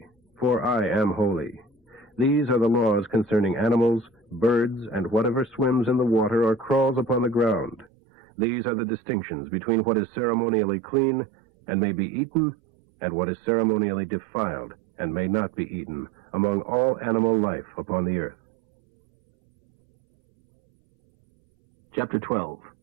for I am holy. These are the laws concerning animals, birds, and whatever swims in the water or crawls upon the ground. These are the distinctions between what is ceremonially clean and may be eaten, and what is ceremonially defiled and may not be eaten among all animal life upon the earth. Chapter 12.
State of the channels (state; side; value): drops out; left; at 7.9 s